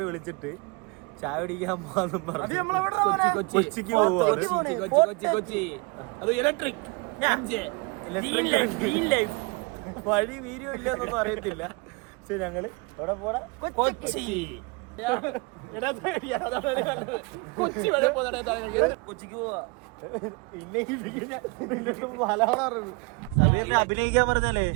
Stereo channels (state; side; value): quieter; left; 28.9 dB